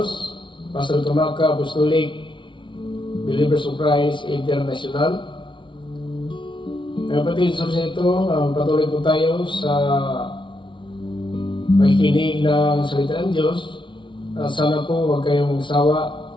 Pastor Tamaka, Apostolic Believers of Christ International. Mga kapatid, sa ito, patuloy po tayo sa makikinig ng salita ng Diyos. Sana po huwag kayong magsawa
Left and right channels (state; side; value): late; right; 0.24 ms